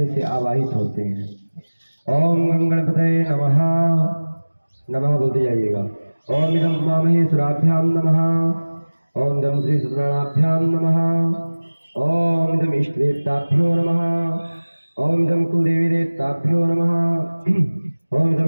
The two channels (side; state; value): both; inverted; correlation -1.00